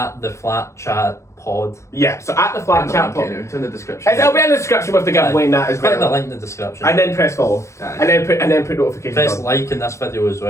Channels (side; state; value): right; late; 0.14 ms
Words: the Flat Chat Pod. Yeah, so at the Flat Chat Pod. It's in the description. It'll be in the description with the giveaway and that as Click the well. link in the description. And then press follow. And then put notifications Press on. like in this video as